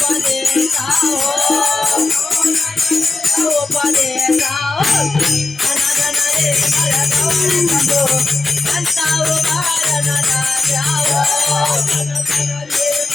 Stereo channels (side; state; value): right; quieter; 3.4 dB